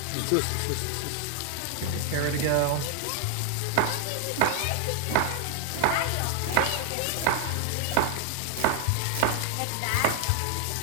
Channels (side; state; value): both; different; correlation 0.00